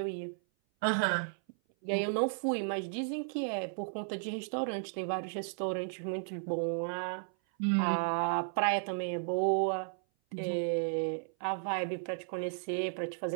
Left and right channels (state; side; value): silent; left; 55 dB below the other